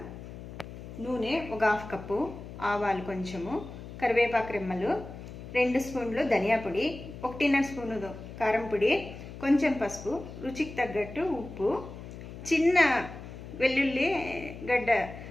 నూనె ఒక 1/2 కప్పు, ఆవాలు కొంచెము, కరివేపాకు రెమ్మలు, 2 స్పూన్లు ధనియా పొడి, 1.5 స్పూను కారం పొడి, కొంచెం పసుపు, రుచికి తగ్గట్టు ఉప్పు, చిన్న వెల్లుల్లి గడ్డ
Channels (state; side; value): noise; left; hum, 12 dB below the sound